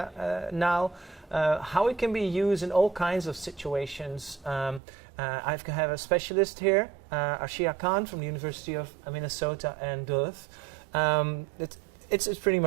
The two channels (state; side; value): drops out; left; at 4.8 s